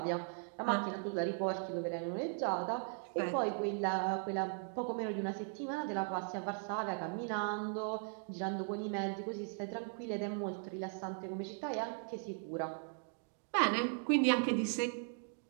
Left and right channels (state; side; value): silent; left; 52 dB below the other